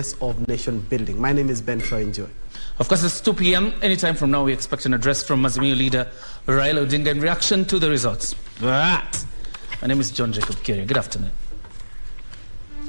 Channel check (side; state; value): both; inverted; correlation -1.00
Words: of nation building. My name is Ben Troy. Enjoy. Of course, it's 2 p.m. Anytime from now, we expect an address from Azimio leader Raila Odinga in reaction to the results. But my name is John Jacob Kiria. Good afternoon.